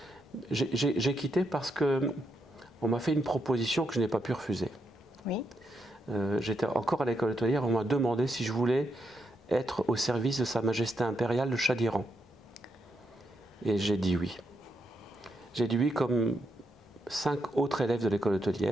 J'ai quitté parce qu'on m'a fait une proposition que je n'ai pas pu refuser. Oui. J'étais encore à l'école hôtelière, on m'a demandé si je voulais être au service de Sa Majesté impériale, le Shah d'Iran. Et j'ai dit oui. J'ai dit oui comme 5 autres élèves de l'école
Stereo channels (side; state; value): both; normal; correlation 0.81